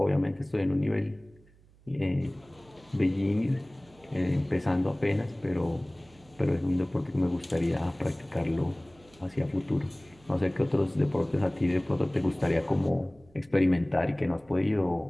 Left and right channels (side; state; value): right; noise; hum, 28 dB below the sound